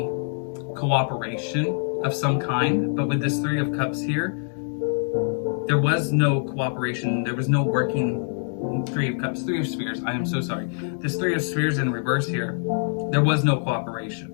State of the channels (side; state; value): right; silent; digital silence